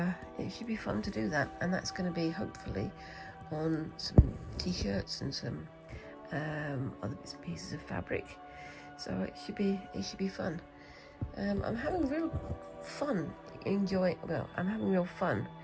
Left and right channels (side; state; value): both; identical; correlation 1.00